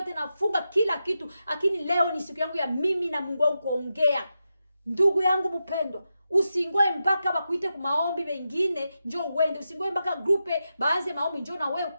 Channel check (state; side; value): inverted; both; correlation -0.89